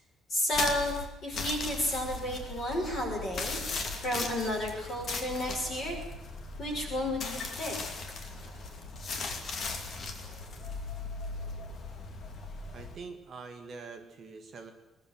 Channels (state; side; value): normal; both; correlation 0.59